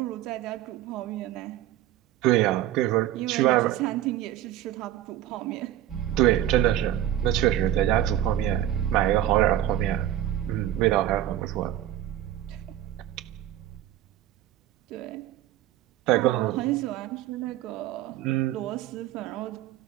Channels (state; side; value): quieter; left; 12.6 dB